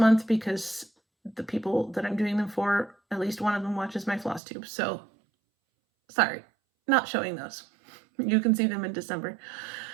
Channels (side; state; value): left; drops out; at 4.4 s